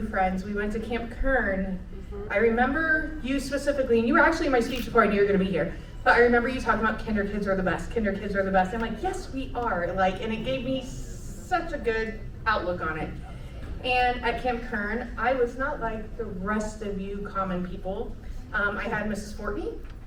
friends. We went to Camp Kern. I remember you specifically, and you were actually in my speech before I knew you were gonna be here. But I remember you talking about kinder kids are the best, kinder kids are the best. I'm like, yes, we are. Like, and it gave me such a good outlook on it. And at Camp Kern, I was not like the rest of you common people. I had Mrs. Fortney.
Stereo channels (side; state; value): both; identical; correlation 1.00